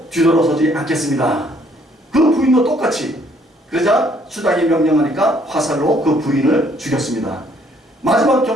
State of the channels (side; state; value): both; normal; correlation 0.65